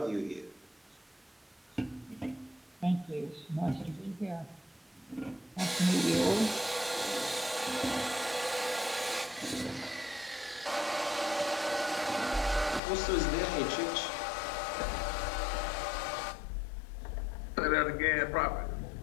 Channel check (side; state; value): right; drops out; at 12.8 s